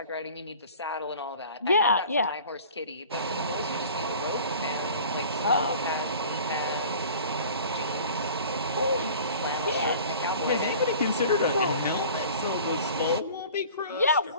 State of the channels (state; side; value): inverted; both; correlation -0.44